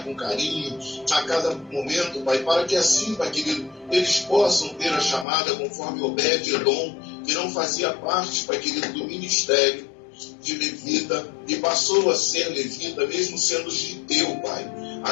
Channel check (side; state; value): right; drops out; at 5.2 s